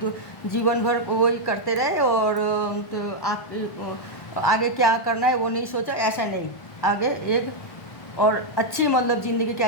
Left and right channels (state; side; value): late; right; 1.1 ms